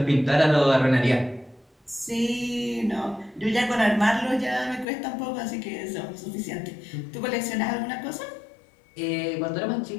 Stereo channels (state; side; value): drops out; right; at 4.9 s